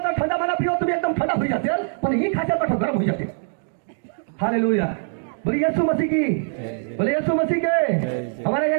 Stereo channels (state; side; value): silent; left; 64 dB below the other